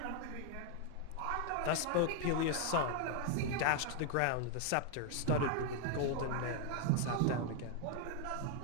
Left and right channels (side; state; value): both; different; correlation 0.00